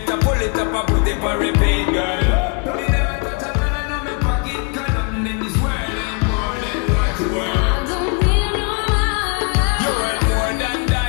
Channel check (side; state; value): right; quieter; 35.1 dB